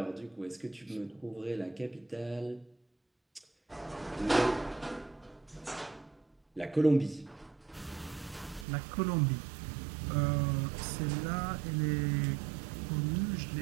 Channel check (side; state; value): left; drops out; at 8.7 s